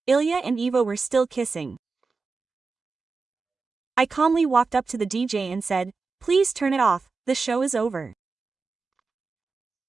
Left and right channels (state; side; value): quieter; left; 4.4 dB